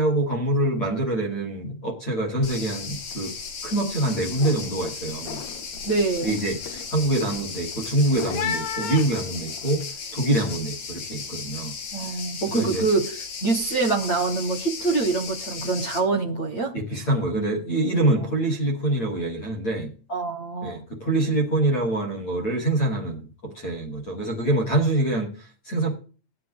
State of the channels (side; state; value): right; late; 8.8 ms